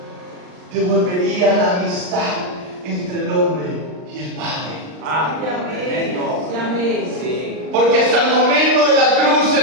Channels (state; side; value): late; left; 39 ms